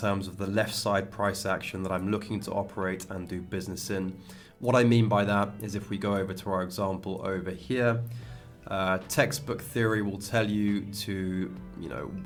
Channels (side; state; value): both; identical; correlation 1.00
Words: of the left side price action that I'm looking to operate and do business in. What I mean by that is if we go over to our example over here, textbook theory will tell you to,